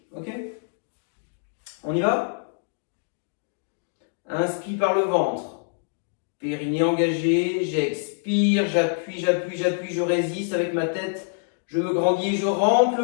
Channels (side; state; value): right; silent; digital silence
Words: Ok ? On y va? Inspire par le ventre. Périnée engagé. J'expire, j'appuie, j'appuie, j'appuie, je résiste avec ma tête. Je me grandis et je rentre le